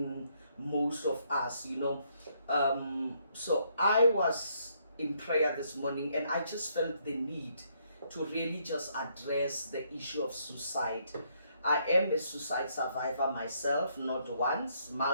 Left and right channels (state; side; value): inverted; both; correlation -0.72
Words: most of us, So I was in prayer this morning, and I just felt the need to really just address the issue of suicide. I am a suicide survivor myself, not once,